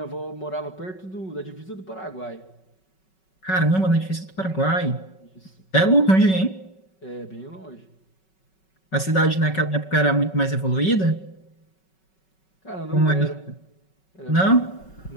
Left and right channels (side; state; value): right; late; 5.3 ms